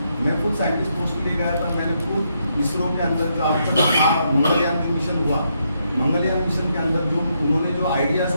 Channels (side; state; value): both; inverted; correlation -0.78